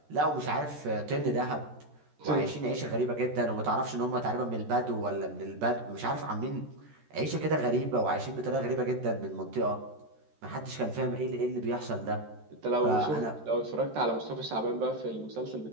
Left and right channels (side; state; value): left; late; 13 ms